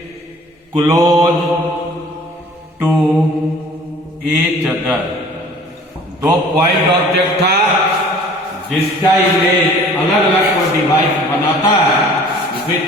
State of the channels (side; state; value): both; normal; correlation 0.49